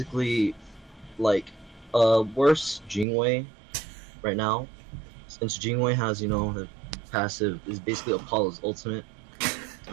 like worse Jingwei right now, since Jingwei has the passive is basically Apollo's ultimate.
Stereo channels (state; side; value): drops out; left; at 3.1 s